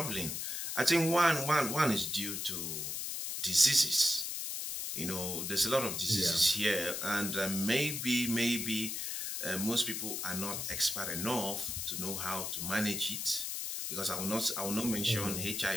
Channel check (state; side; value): noise; left; hiss, 3 dB below the sound